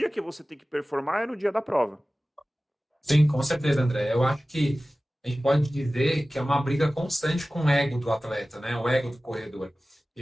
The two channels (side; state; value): both; normal; correlation 0.97